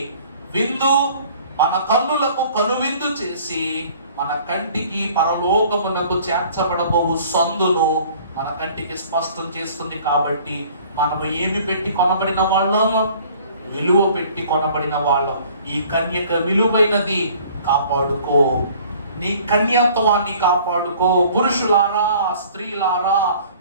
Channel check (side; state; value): both; inverted; correlation -0.52